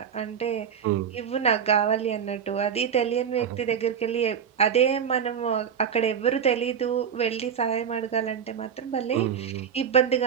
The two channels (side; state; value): left; quieter; 7.7 dB